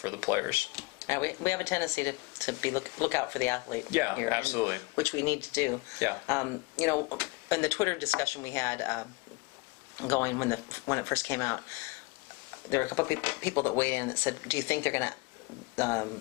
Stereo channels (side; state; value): right; quieter; 25.8 dB